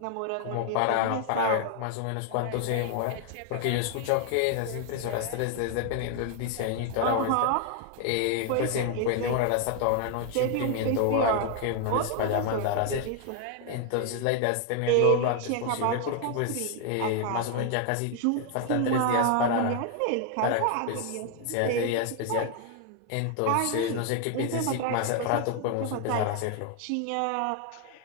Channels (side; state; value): both; different; correlation 0.00